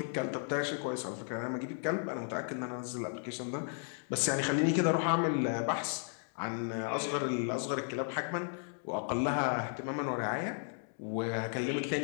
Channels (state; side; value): silent; right; 55 dB below the other